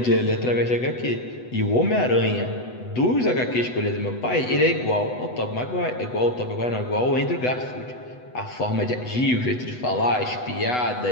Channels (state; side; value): late; right; 8.0 ms